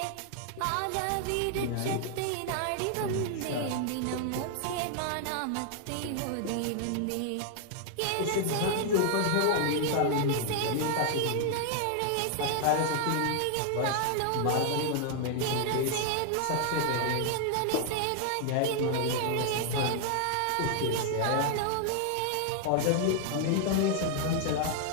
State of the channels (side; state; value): both; different; correlation 0.00